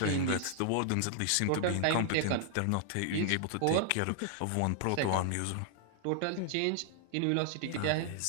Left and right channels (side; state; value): both; different; correlation -0.01